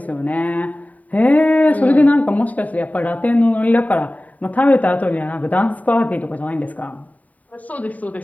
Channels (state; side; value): late; right; 0.071 ms